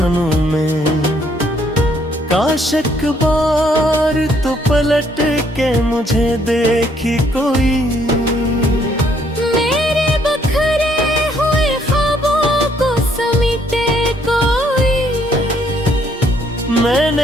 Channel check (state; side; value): normal; both; correlation 0.68